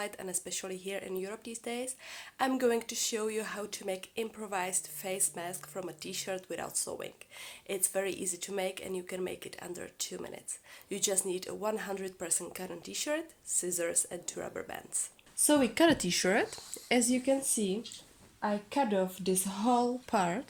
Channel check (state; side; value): identical; both; correlation 1.00